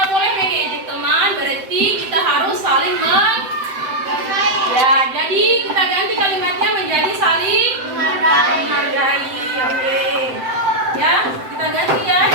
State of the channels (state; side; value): late; left; 7.8 ms